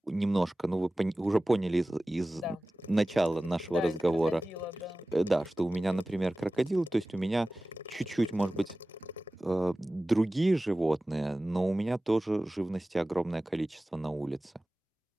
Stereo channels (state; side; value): normal; both; correlation 0.97